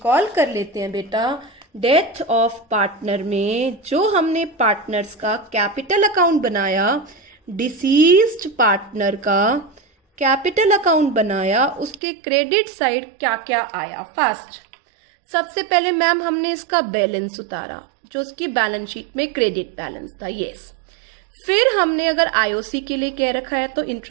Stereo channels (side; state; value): left; drops out; at 12.0 s